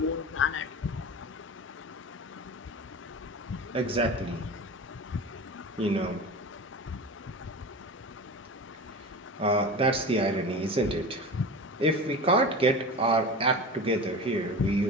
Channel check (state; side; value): normal; both; correlation 0.30